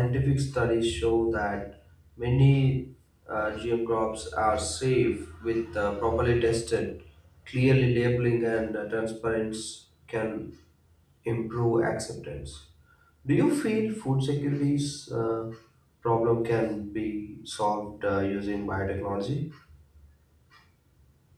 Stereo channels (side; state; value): both; identical; correlation 1.00